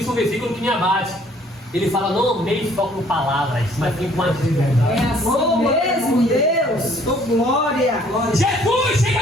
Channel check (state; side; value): normal; both; correlation 0.60